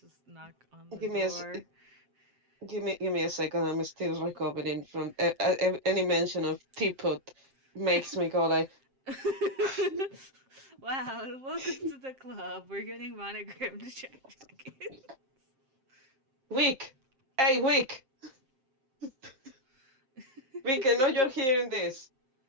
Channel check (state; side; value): late; left; 7.5 ms